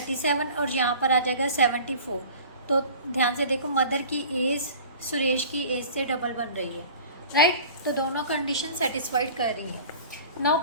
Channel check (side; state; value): both; inverted; correlation -0.42